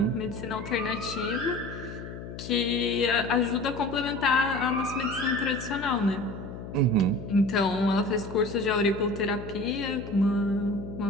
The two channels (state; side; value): noise; left; hum, 11 dB below the sound